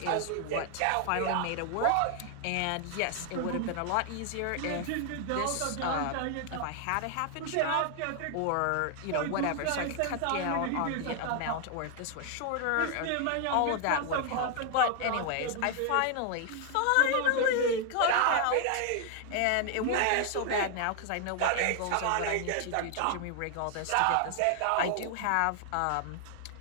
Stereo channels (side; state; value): both; different; correlation 0.00